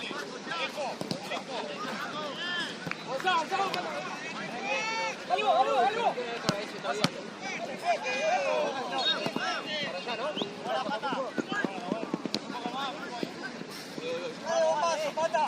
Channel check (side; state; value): both; identical; correlation 1.00